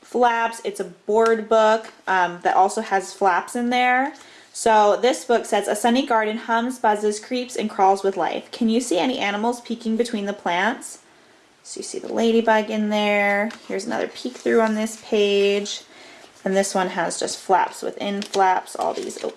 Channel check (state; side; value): identical; both; correlation 1.00